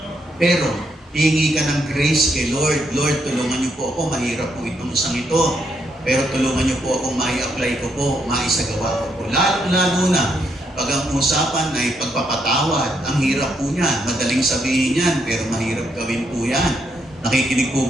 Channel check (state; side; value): normal; both; correlation 0.76